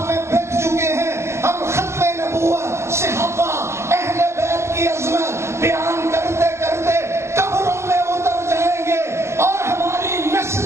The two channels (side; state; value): left; late; 0.13 ms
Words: میں بک چکے ہیں، ہم ختم نبوت، صحابہ، اہل بیت کی عظمت بیان کرتے کرتے قبروں میں اتر جائیں گے، اور ہماری